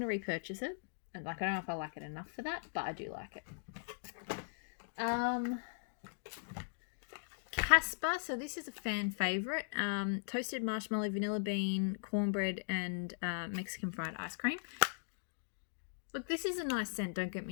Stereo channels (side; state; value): right; silent; digital silence